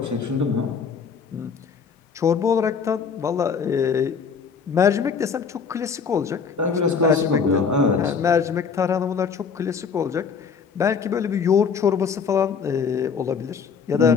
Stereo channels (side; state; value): right; quieter; 5.9 dB